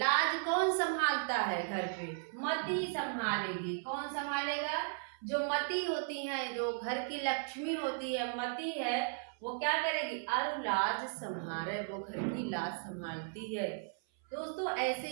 कौन संभालता है घर पे, मती संभालेगी। कौन संभालेगा, जो मती होती है, जो घर की लक्ष्मी होती है, मती है, वो क्या करेगी, अरु लाज संहारे, वो घर की लाज संभालती है। दोस्तों ऐसे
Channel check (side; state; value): left; silent; 54 dB below the other